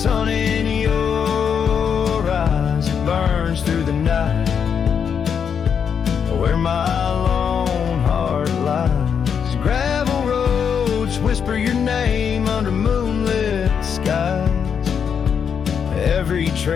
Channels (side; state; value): right; quieter; 7.2 dB